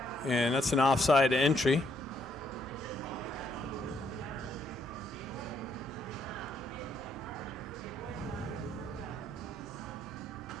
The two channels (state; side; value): normal; both; correlation 0.72